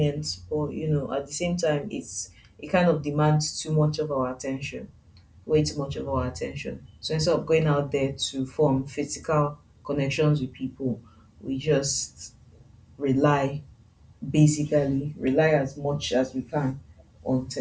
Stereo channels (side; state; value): both; identical; correlation 1.00